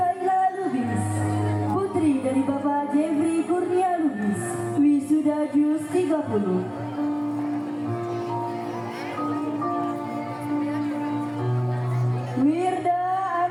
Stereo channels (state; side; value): identical; both; correlation 1.00